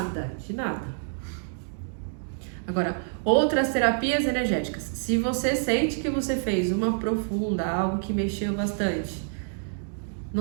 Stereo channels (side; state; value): left; silent; digital silence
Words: de nada. Agora, outras terapias energéticas. Se você sente que você fez uma profunda, algo que mexeu bastante,